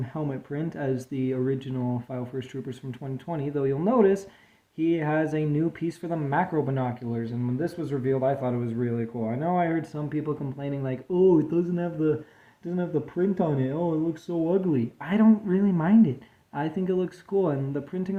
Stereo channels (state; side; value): identical; both; correlation 1.00